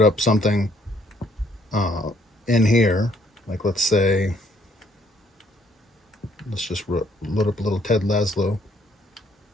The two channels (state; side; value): normal; both; correlation 0.66